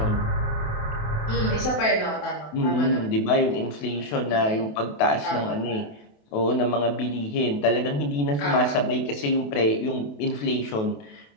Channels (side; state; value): right; late; 28 ms